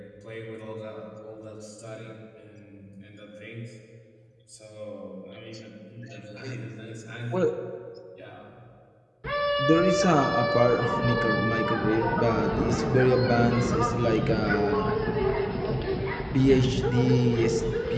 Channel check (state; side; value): identical; both; correlation 1.00